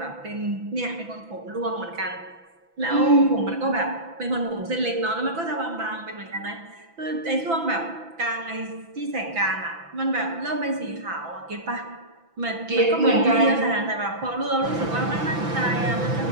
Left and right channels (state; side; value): late; left; 6.0 ms